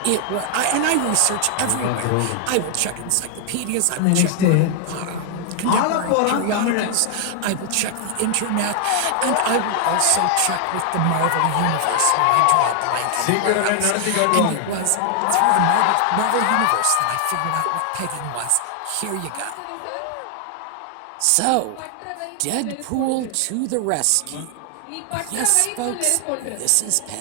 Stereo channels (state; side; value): different; both; correlation 0.00